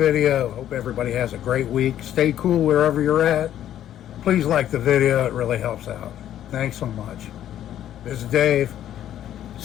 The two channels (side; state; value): right; quieter; 11.4 dB